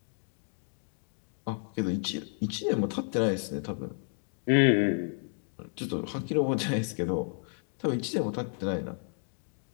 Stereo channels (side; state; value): right; silent; 57 dB below the other